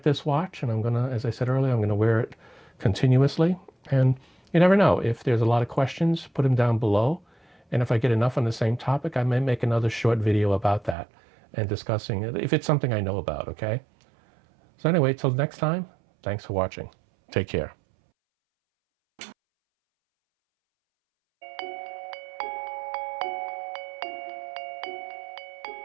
this watch, and I'm going to, as I said earlier, I'm going to wear it continuously. And you never know. If there's a lot of questions, put them down below. And if I get enough on the same topic, I may make another short video about that and discussing it, if it's something I know about, okay? So anyway, till next time, thanks for watching. Take care.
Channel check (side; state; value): left; drops out; at 11.0 s